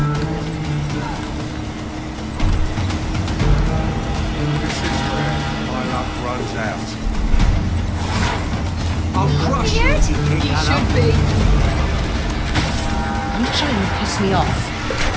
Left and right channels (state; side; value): identical; both; correlation 1.00